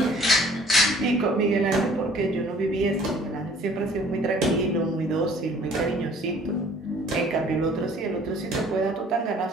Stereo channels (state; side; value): normal; both; correlation 0.54